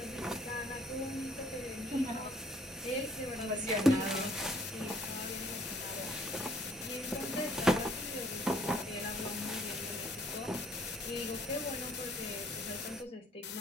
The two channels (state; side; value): normal; both; correlation 0.61